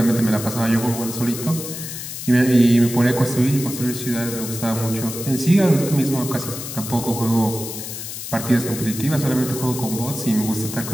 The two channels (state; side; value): noise; left; hiss, 8 dB below the sound